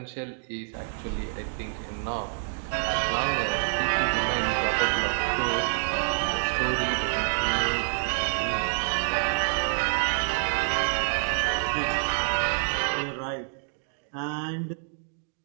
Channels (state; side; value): silent; left; digital silence